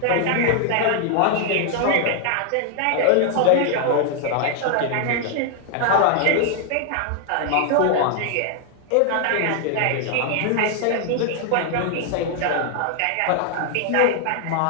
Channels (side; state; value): both; different; correlation 0.00